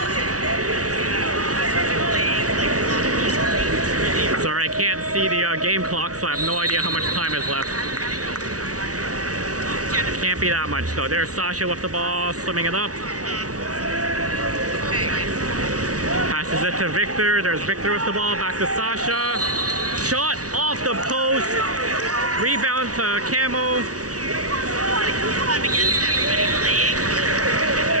Can't see the game clock, so I have no idea how much time is left. Can't be that much though. There's Sasha with the ball, swimming it up. Passes it to Victor. There's Victor with the ball, back to Sasha. Shot off the post. Rebound to Camo.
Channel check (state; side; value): late; left; 0.67 ms